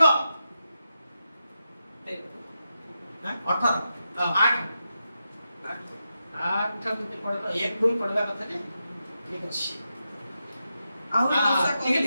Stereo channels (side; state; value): both; inverted; correlation -0.88